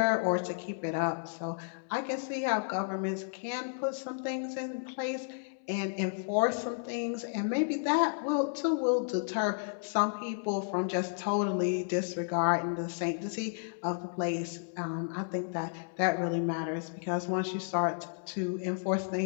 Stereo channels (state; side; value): silent; right; 56 dB below the other